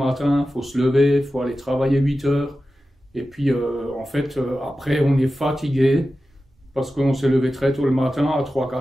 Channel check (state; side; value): normal; both; correlation 0.93